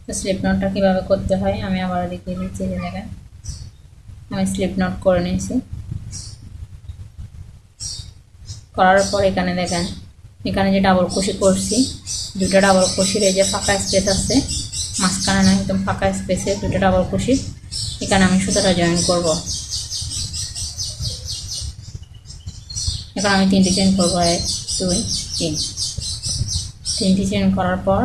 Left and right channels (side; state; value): both; identical; correlation 1.00